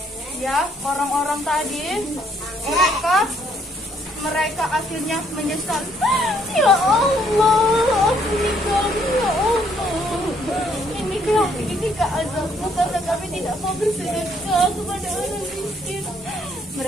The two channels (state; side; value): normal; both; correlation 0.67